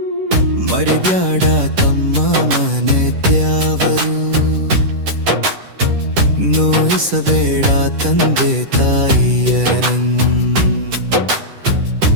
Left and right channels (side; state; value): left; late; 10 ms